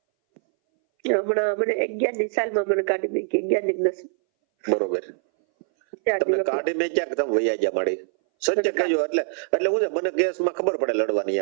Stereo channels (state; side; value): silent; left; 60 dB below the other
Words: હમણાં મને 11ની સાલમાં મને કાઢી મૂકી. 11 ની 10. બરોબર. તમે કાઢી મેં ક્યાંક તમે વૈયા ગયા માડી? સચ્ચે કહેજો. એટલે હું છે મને કેસમાં ખબર પડે લડવાની